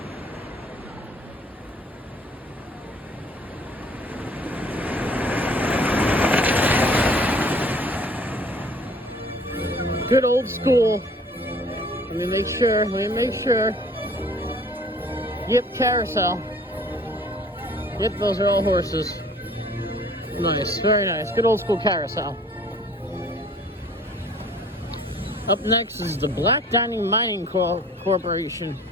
Good old school. Let me make sure. Yep, carousel. Yep, those are all horses. Nice, very nice. Good old school carousel. Up next is the Black Diamond Mining Corporation.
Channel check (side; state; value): both; normal; correlation 0.52